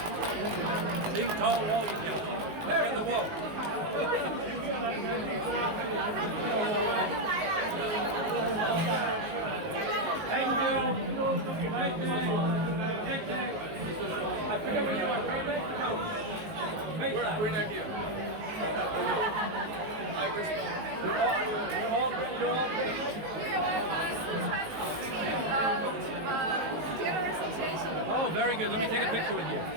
Ching To Wo Yi Piao. In the wall. Thank you. Thank you. I forget what you want. We're not here. You're all General Association. Oh, very good. Let me take a picture with you.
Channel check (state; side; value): late; left; 19 ms